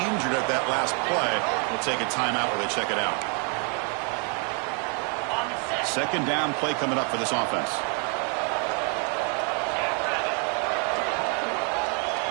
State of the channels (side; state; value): left; quieter; 38.3 dB